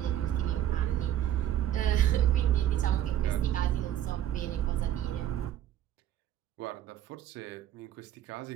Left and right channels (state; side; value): quieter; left; 11.6 dB